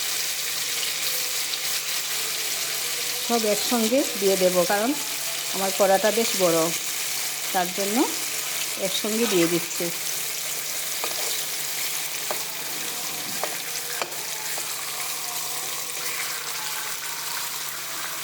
সব একসঙ্গে দিয়ে দেব, কারণ আমার কড়াটা বেশ বড়, তার জন্য একসঙ্গে দিয়ে দিচ্ছি।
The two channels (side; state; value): both; identical; correlation 1.00